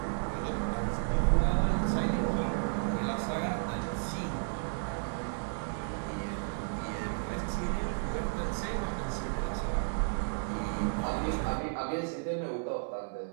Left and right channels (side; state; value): left; silent; digital silence